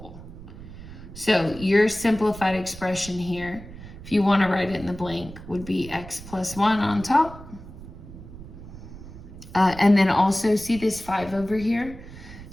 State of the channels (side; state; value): right; noise; rumble, 15 dB below the sound